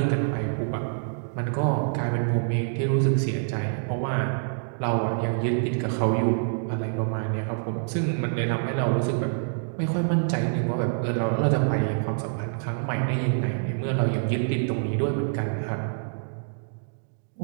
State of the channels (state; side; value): silent; left; digital silence